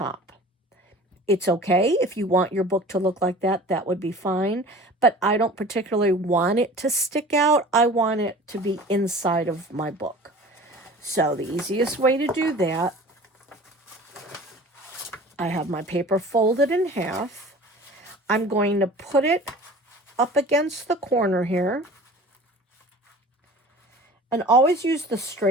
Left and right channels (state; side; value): normal; both; correlation 0.42